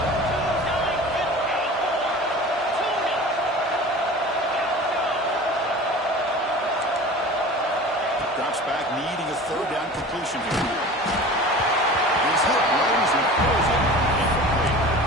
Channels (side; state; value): both; normal; correlation 0.38